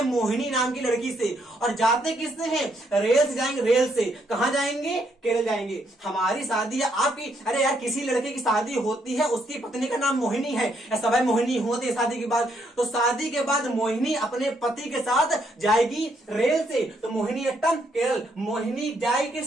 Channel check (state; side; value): normal; both; correlation 0.73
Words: मोहिनी नाम की लड़की से, और जाते किससे हैं? रेल से जाएंगे। रेल से कहां जाएंगे? केरल जाएंगे। हमारी शादी या आपकी, अरे यार किसी लड़के की शादी होती है, उसकी पत्नी का नाम मोहिनी है, या सब मोहिनी होते हैं शादी के बाद। तो शादी के बाद मोहिनी अपने पति के साथ जाएगी रेल से, तो मोहिनीअट्टम केरल। मोहिनी जाएगी